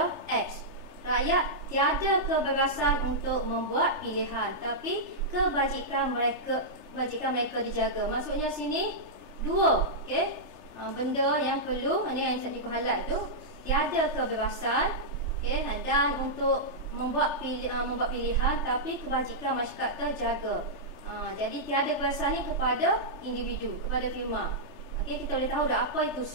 X. Rakyat tiada kebebasan untuk membuat pilihan, tapi kebajikan mereka dijaga. Maksudnya sini dua benda yang perlu, ini yang saya highlight tu, tiada kebebasan dan untuk membuat pilihan, tapi kebajikan masyarakat terjaga. Jadi tiada kebebasan ni kepada individu, kepada firma. Kita boleh tahu dah apa itu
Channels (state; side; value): late; left; 3.3 ms